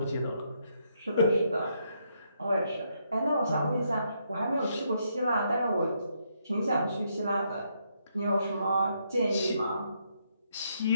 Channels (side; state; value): both; inverted; correlation -0.76